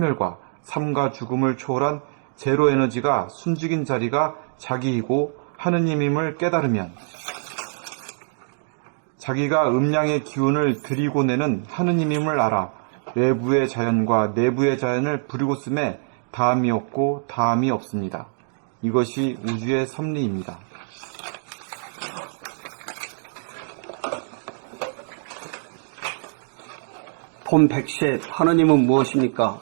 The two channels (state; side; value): silent; left; digital silence